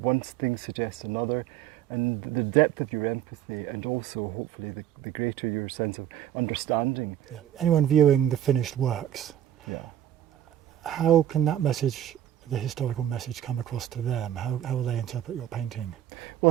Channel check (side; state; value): left; quieter; 11.3 dB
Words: one thing suggests another, and the depth of your empathy, and also hopefully the greater your sense of understanding. Yeah. Anyone viewing the finished works, Yeah. how can that message, the historical message, come across to them? How will they interpret your painting? Well,